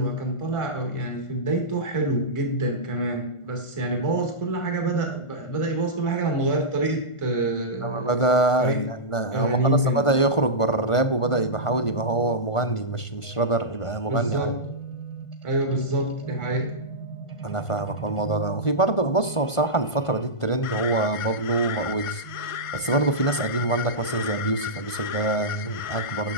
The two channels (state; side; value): late; right; 1.5 ms